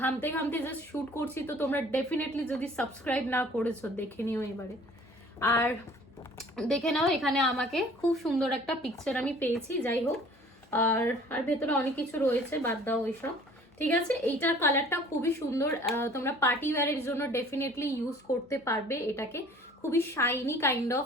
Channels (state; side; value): normal; both; correlation 0.51